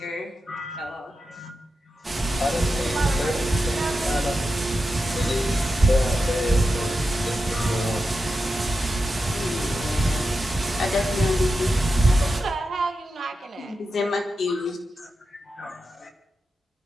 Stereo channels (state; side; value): normal; both; correlation 0.90